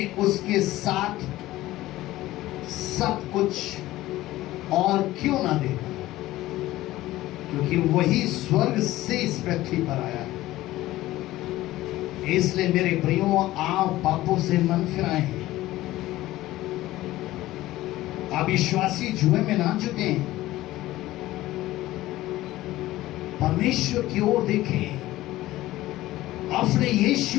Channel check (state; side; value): quieter; right; 16.4 dB